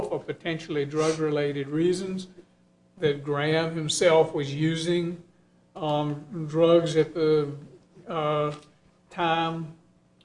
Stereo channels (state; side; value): identical; both; correlation 1.00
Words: for potentially drug-related reasons, that Graham himself was using drugs at the time